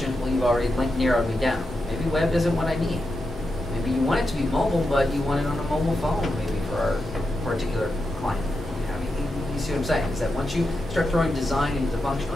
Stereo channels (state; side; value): normal; both; correlation 0.87